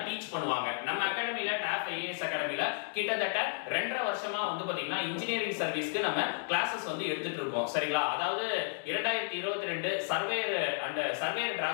டீச் பண்ணுவாங்க. நம்ம அகாடமில TAF IAS அகாடமில கிட்டத்தட்ட 2.5 வருஷமா வந்து பாத்தீங்கன்னா இன்ஜினியரிங் சர்வீஸ்க்கு நம்ம கிளாसेस வந்து எடுத்துட்டு இருக்கோம். சரிங்களா? அதாவது 2022 சர்வேயர் அண்ட் சர்வேயர்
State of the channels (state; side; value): silent; right; digital silence